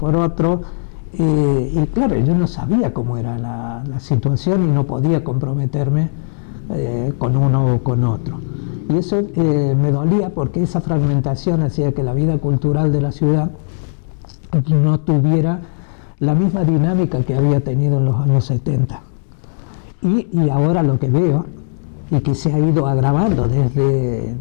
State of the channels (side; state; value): right; silent; digital silence